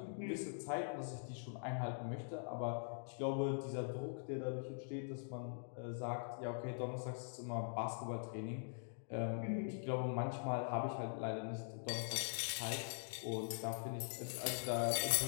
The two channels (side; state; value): right; silent; digital silence